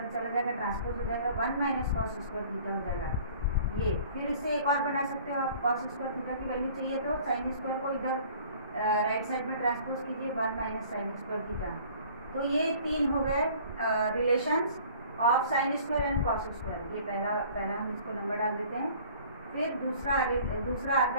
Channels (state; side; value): inverted; both; correlation -0.50